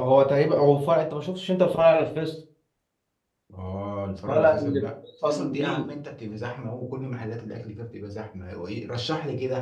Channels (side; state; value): both; identical; correlation 1.00